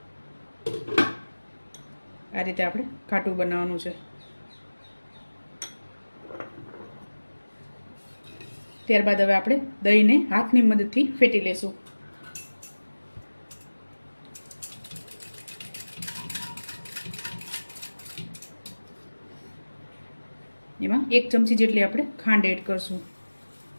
આ રીતે આપણે ઘાટું બનાવવાનું છે. ત્યારબાદ હવે આપણે દહીંને હાથની મદદથી ફેટી લેશું. એમાં 1 ચમચી જેટલી આપણે ખાંડ એડ કરશું.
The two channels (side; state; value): both; inverted; correlation -1.00